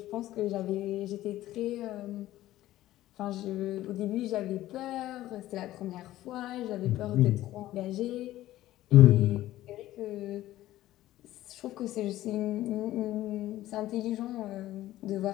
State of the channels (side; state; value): right; quieter; 14.9 dB